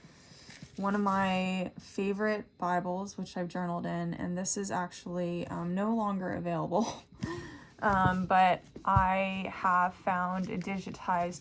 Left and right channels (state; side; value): identical; both; correlation 1.00